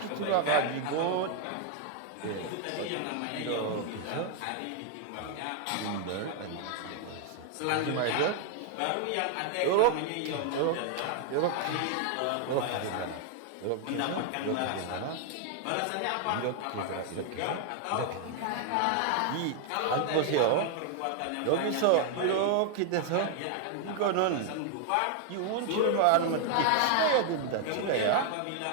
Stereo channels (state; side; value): different; both; correlation 0.00